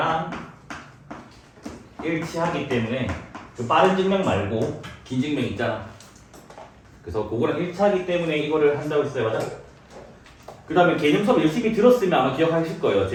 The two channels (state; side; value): identical; both; correlation 1.00